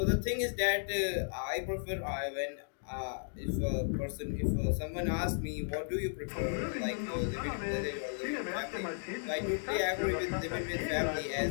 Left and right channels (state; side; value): silent; right; digital silence